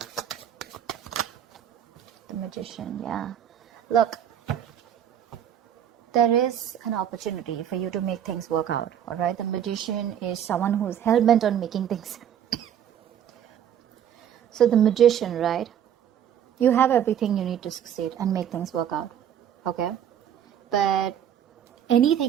The Magician, yeah. Look, there is an opportunity for you to make things work out, alright? The Magician is someone who's hell-bent on making things. So the Magician, right? You have everything you need to succeed and make things work out, okay? But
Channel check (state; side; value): quieter; left; 9.7 dB